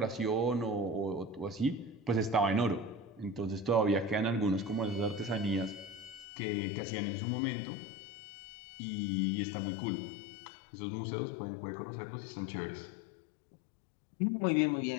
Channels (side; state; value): right; drops out; at 6.2 s